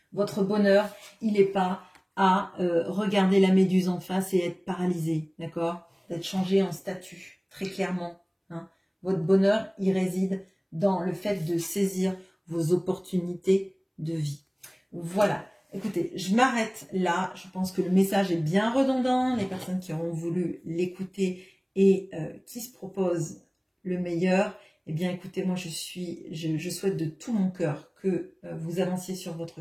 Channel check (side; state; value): both; identical; correlation 1.00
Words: Votre bonheur, il n'est pas à regarder la méduse en face et être paralysé, d'accord? D'être changé en statue, très clairement. Hein. Votre bonheur, il réside dans le fait de saisir vos opportunités de vie. Voilà. Écoutez, je m'arrête là. Je pense que le message est bien redondant. Les personnes qui auront voulu l'écouter et qui se proposent le meilleur, eh bien, écoutez, moi, je souhaite de tout mon cœur que vous avanciez sur votre